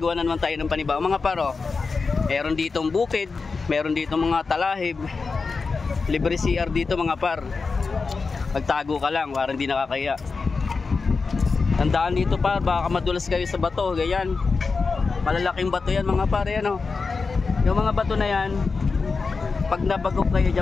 na naman tayo ng panibago mga paro. Meron ditong bukid, meron ditong mga talahib, libre CR dito mga par. Pagtago ka lang, parang hindi nakakaya. Tandaan dito par, baka madulas kayo sa bato, ganyan. Malalaking bato yan mga par, yan o. Yung mga bato na yan, pag nabagok kayo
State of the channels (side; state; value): right; quieter; 4.5 dB